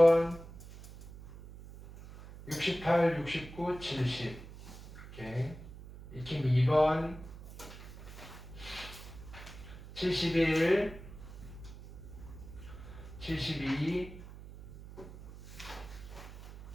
68, 69, 70 이렇게. 익힘 2번 71, 72,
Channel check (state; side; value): noise; right; hum, 15 dB below the sound